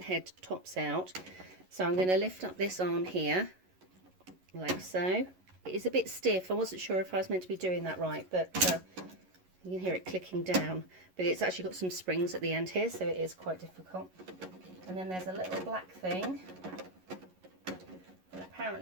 tops out. So I'm going to lift up this arm here, like so. It is a bit stiff. I wasn't sure if I was meant to be doing that right, but you can hear it clicking down. But it's actually got some springs at the end here, so it is quite difficult. And then there's a little black thing. And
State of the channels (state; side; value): late; left; 11 ms